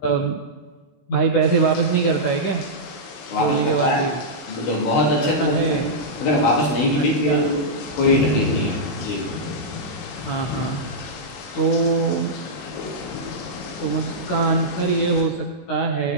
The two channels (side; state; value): right; late; 16 ms